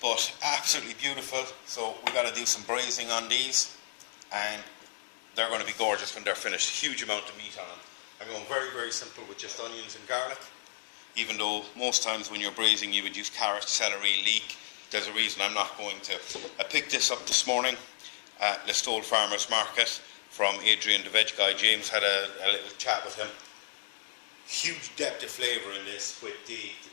but absolutely beautiful. So we got to do some braising on these, and they're going to be gorgeous when they're finished. Huge amount of meat on them. I'm going very, very simple with just onions and garlic. Even though most times when you're braising you would use carrot, celery, leek. There's a reason I'm not going to. I picked this up this morning at Listowel Farmers Market from Adrian the veg guy. James had a little chat with him. Huge depth of flavour in this with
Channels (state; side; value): silent; right; digital silence